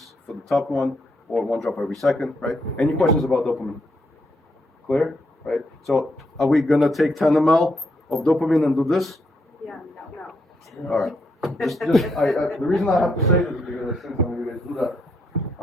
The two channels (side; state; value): both; normal; correlation 0.77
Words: for the top one, or 1 drop every second, right? Any questions about dopamine? Clear, right? So are we going to take 10 ml of dopamine and do this? Yeah, no. All right. The reason I have to say this is because I think some of you guys do that.